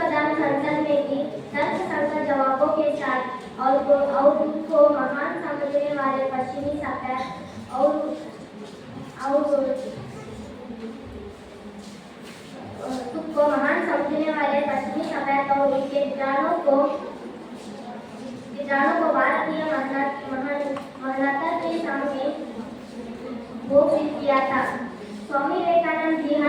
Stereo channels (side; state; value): both; identical; correlation 1.00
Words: धर्म संसद में भी तर्कसंगत जवाबों के साथ और उनको महान समझने वाले पश्चिमी सभ्यता और उनके विचारों को भारतीय मानवता के सामने घोषित किया था। स्वामी विवेकानंद जी